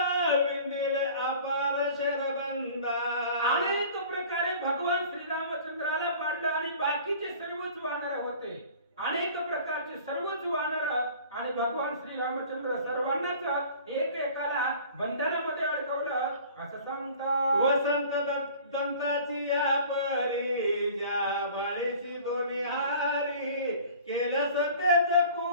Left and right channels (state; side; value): inverted; both; correlation -0.46